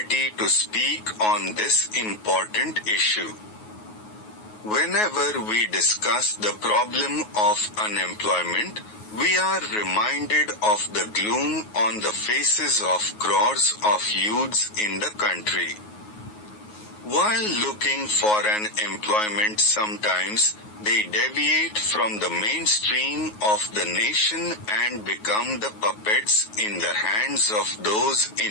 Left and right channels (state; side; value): late; right; 9.4 ms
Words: to speak on this important issue. Whenever we discuss the problem of unemployment, we are reminded of the gloom on the faces of crores of youths in the country. While looking for an employment, sometimes they deviate from the mainstream of the nation and become the puppets in the hands of those